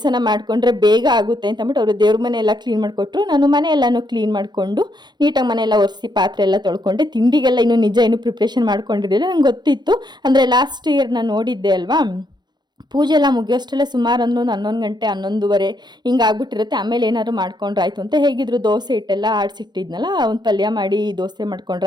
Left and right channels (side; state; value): left; late; 0.21 ms